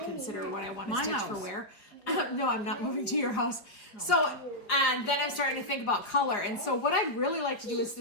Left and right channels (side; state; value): right; late; 4.7 ms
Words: what I want to stitch for where. No, I'm not moving to your house. So, and then I'm starting to think about color. And so what I'd really like to do is